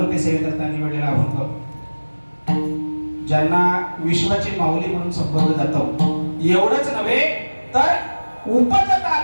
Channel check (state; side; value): inverted; both; correlation -1.00